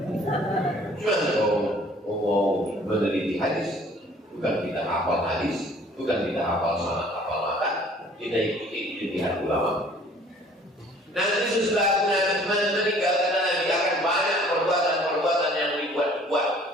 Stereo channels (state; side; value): normal; both; correlation 0.54